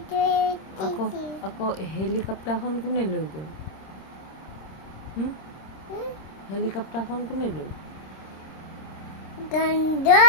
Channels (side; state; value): right; late; 26 ms